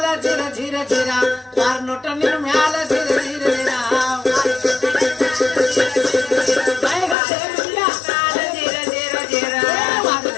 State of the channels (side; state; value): right; drops out; at 7.2 s